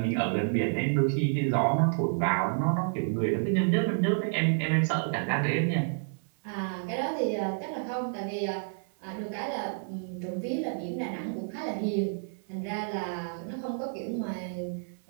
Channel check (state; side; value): silent; left; 57 dB below the other